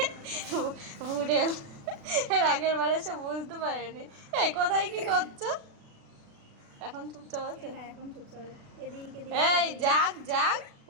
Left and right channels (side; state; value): left; late; 36 ms